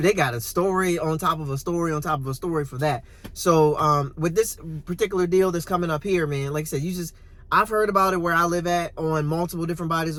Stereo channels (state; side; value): identical; both; correlation 1.00